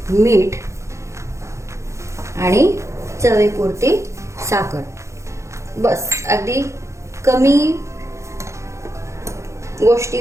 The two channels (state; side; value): late; left; 0.14 ms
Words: मीठ आणि चवीपुरती साखर। बस अगदी कमी